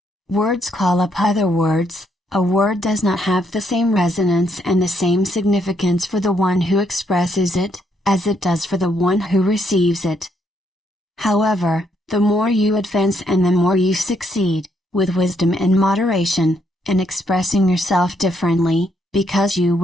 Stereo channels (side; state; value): both; normal; correlation 0.74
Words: Words call up other words. A word does not have the same resonance and the same significance for the one who expresses it, as it does for the one who receives it. However, the more you advance and the more you succeed, with wisdom and moderation, in expressing yourself differently, because you